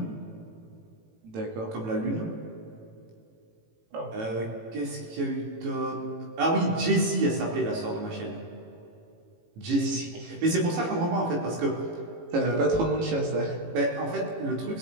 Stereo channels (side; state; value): left; late; 18 ms